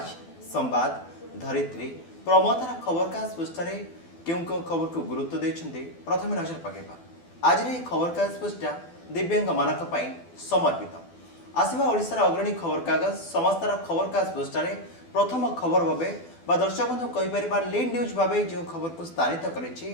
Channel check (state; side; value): late; right; 12 ms